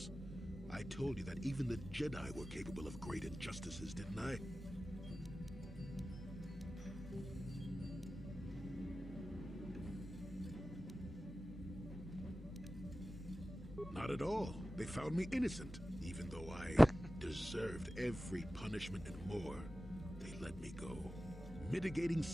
I told you that even the Jedi were capable of great injustices, didn't I? Not at all. They found me innocent, even though I deserved every punishment and more. They let me go. Mitigating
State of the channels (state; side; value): normal; both; correlation 0.95